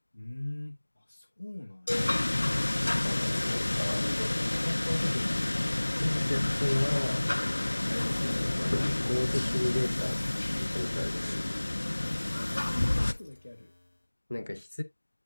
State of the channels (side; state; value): both; inverted; correlation -1.00